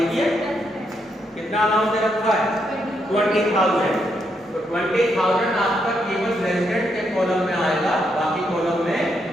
ही है। कितना अमाउंट दे रखा है, 20,000, तो 20,000 आपका केवल रेजिडेंट के कॉलम में आएगा, बाकी कॉलम में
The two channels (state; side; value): normal; both; correlation 0.78